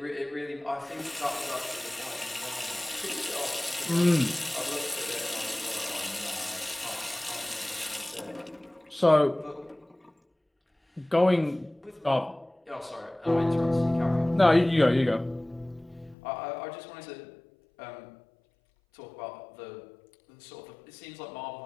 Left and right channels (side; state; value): right; drops out; at 16.2 s